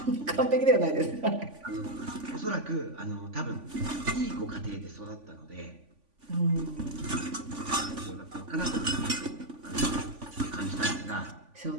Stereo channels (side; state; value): left; late; 3.5 ms